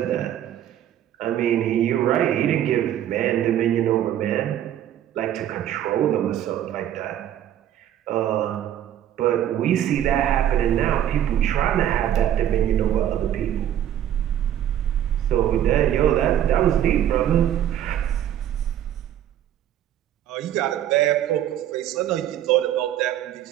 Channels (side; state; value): left; quieter; 11.1 dB